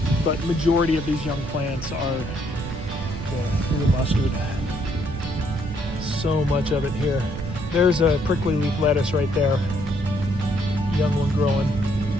but majority of these young plants are the blue mustard. So much of it here. There's a prickly leaf lettuce right there, young one growing.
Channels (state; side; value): noise; right; rumble, 8 dB below the sound